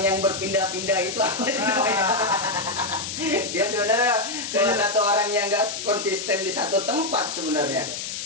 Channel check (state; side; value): noise; left; hiss, 6 dB below the sound